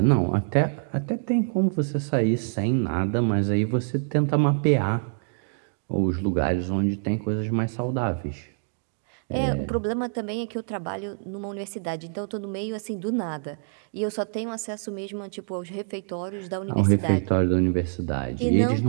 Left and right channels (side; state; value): left; silent; digital silence